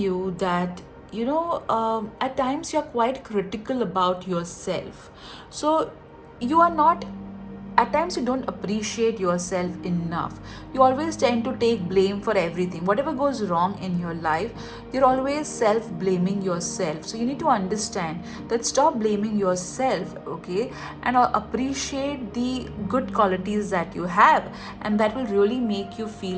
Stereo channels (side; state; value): both; identical; correlation 1.00